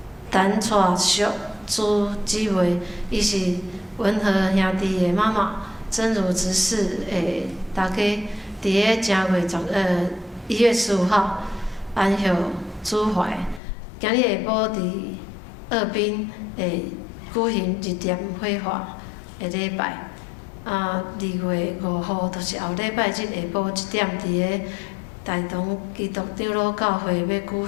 陈蔡淑朱姊妹，伊是文和兄弟的妈妈，真如执事的大家，伫个正月1月15号安歇主怀。今日下晡伫二滨会举行日点火化的礼拜。2月5号就是后礼拜日下晡1点，伫个大同基督长老教会要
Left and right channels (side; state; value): right; drops out; at 13.6 s